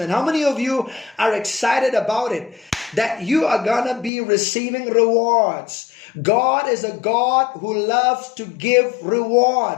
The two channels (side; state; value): right; drops out; at 4.1 s